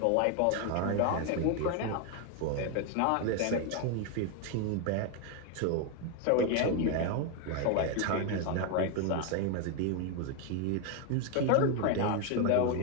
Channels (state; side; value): different; both; correlation 0.01